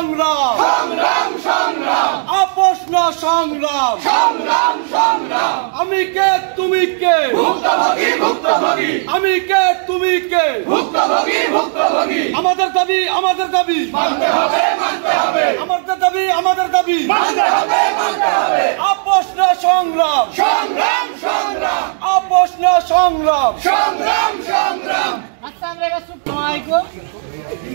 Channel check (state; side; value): silent; left; digital silence